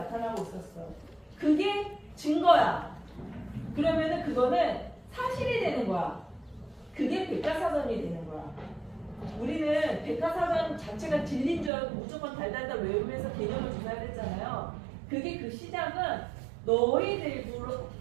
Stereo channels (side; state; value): left; drops out; at 11.7 s